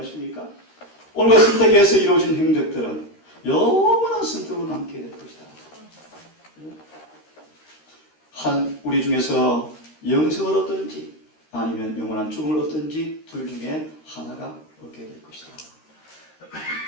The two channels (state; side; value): late; right; 13 ms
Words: 오늘과 선택에서 이루어진 행적들은 영원한 선택으로 남게 될 것이다. 우리 중에서 영생을 얻든지 아니면 영원한 죽음을 얻든지 둘 중에 하나가 얻게 될 것이다.